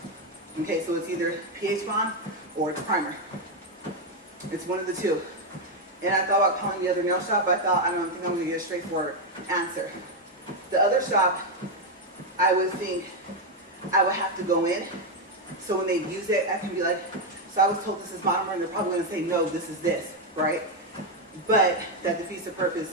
Okay, so it's either pH bond or it's primer. It's one of the two. And I thought about calling the other nail shop, but I don't think I'm gonna get a straightforward answer. The other shop, I would think I would have to go in. So when they use it, I can be like, so I was told this is monomer, and they're probably gonna say, no, this is this, right? But that defeats the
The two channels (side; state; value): both; normal; correlation 0.04